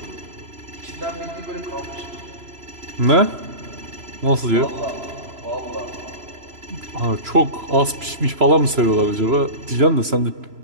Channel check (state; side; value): late; left; 3.0 ms